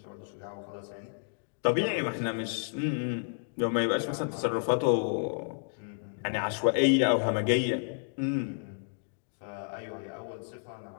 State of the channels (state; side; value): silent; right; digital silence